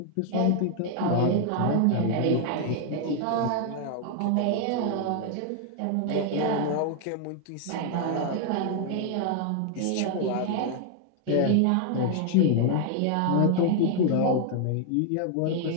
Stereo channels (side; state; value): both; different; correlation 0.00